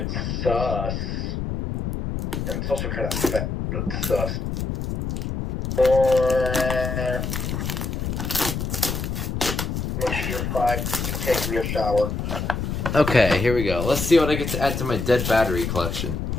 sus. And it's also kind of fat, but it's sus. Once you're 5, you take your shower. Okay, here we go. Let's see what I get to add to my dead battery collection.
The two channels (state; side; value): noise; left; rumble, 3 dB below the sound